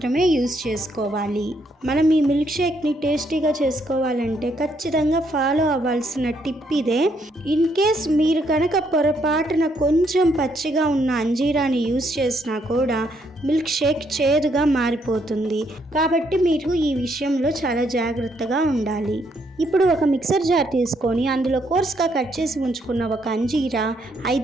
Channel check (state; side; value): normal; both; correlation 0.73